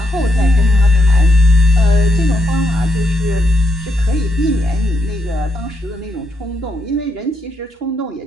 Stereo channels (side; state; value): both; normal; correlation 0.79